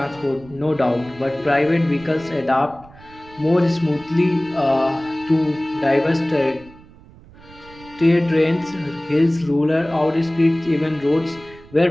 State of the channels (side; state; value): right; noise; rumble, 22 dB below the sound